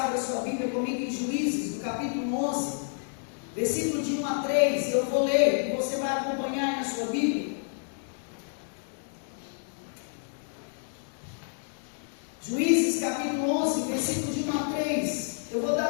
sua Bíblia comigo em Juízes, no capítulo 11, versículo de 1 a 3. Eu vou ler e você vai acompanhar aí na sua Bíblia. Juízes, capítulo 11, versículo de 1 a 3. Eu vou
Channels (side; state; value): right; silent; 58 dB below the other